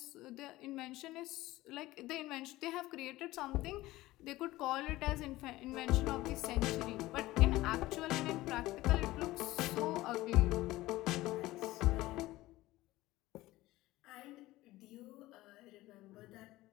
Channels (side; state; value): right; quieter; 17.7 dB